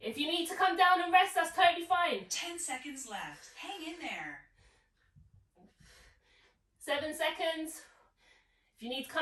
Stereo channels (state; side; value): identical; both; correlation 1.00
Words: you need to come down and rest, that's totally fine. 10 seconds left. Hang in there. 7 seconds. If you need to